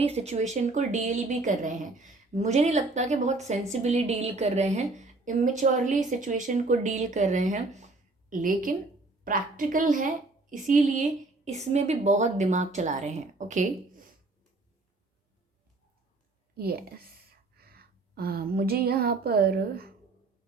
सिचुएशन को डील भी कर रहे हैं। मुझे नहीं लगता कि बहुत सेंसिबली डील कर रहे हैं, इमेच्योरली सिचुएशन को डील कर रहे हैं, लेकिन प्रैक्टिकल है, इसीलिए इसमें भी बहुत दिमाग चला रहे हैं। Okay, yes. मुझे यहाँ पर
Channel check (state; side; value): quieter; left; 3.3 dB